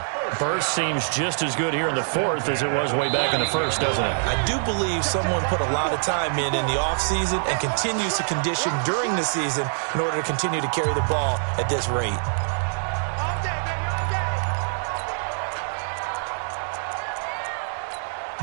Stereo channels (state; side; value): silent; left; digital silence